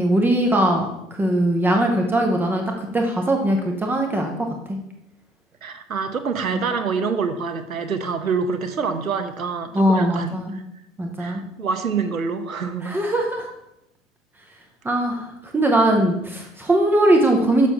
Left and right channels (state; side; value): normal; both; correlation 0.68